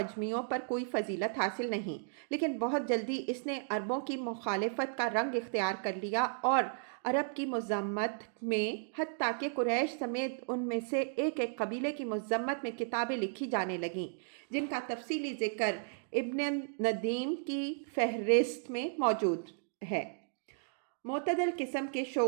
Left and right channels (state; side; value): silent; left; digital silence